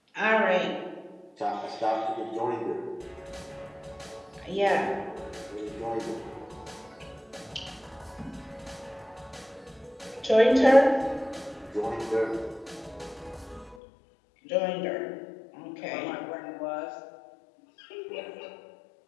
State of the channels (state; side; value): drops out; right; at 13.8 s